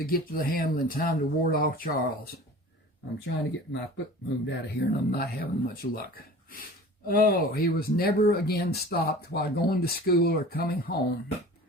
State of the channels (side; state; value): both; normal; correlation 0.41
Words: get to the handle in time to ward off Charles. I'm trying to get my foot moved out of here and I'm not having much luck. Oh, he was never again stopped while going to school or coming home.